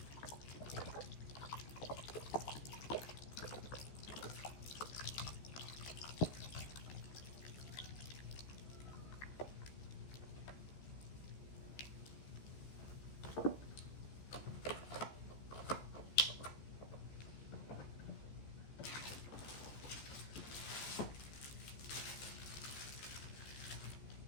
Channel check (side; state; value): right; late; 14 ms